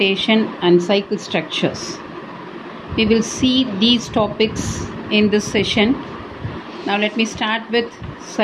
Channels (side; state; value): both; identical; correlation 1.00